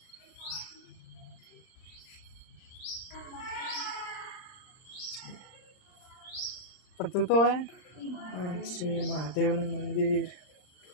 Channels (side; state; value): right; late; 39 ms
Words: પણ તું તો હે આ છે મહાદેવનું મંદિર,